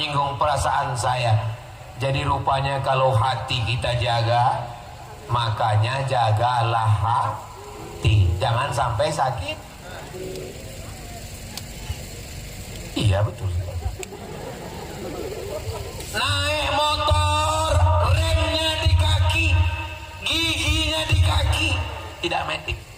perasaan saya. Jadi rupanya kalau hati kita jaga, makanya jagalah hati, jangan sampai sakit. Iya betul. Naik motor, remnya di kaki, giginya di kaki, tidak metik.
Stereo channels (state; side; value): identical; both; correlation 1.00